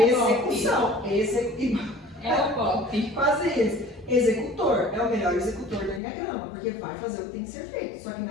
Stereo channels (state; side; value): drops out; right; at 6.0 s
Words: Execução. É o pop. Quase isso. Executor é o melhor executor do Enneagrama, porque vai fazer o que tem que ser feito, só que